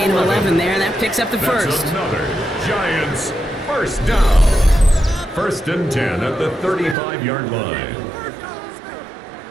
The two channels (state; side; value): drops out; left; at 7.0 s